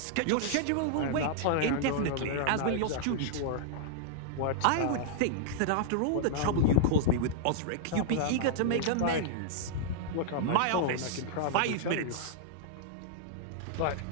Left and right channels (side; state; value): both; different; correlation -0.01